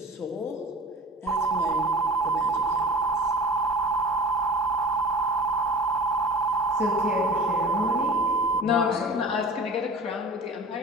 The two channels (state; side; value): normal; both; correlation 0.40